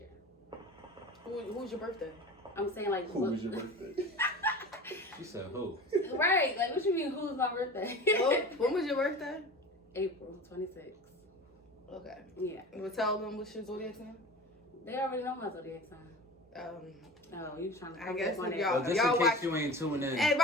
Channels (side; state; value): both; normal; correlation 0.35